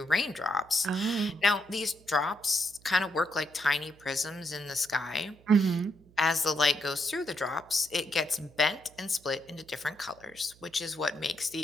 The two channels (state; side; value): noise; right; hum, 26 dB below the sound